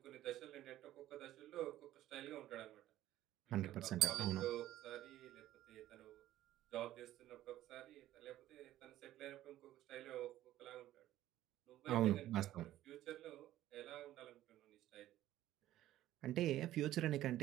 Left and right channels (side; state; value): left; quieter; 13.9 dB